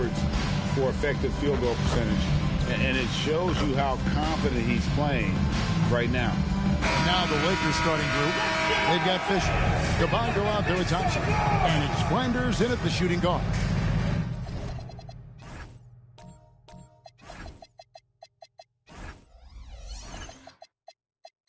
for effective field goal percentage. And it shows you how confident he's playing right now. Now the Lakers starting group. They've got Fisher, Cabango out there with Thompson, and it's Flanders in at the shooting guard.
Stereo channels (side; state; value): both; identical; correlation 1.00